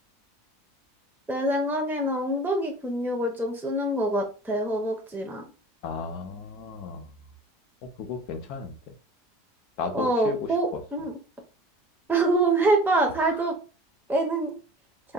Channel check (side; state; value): both; normal; correlation 0.43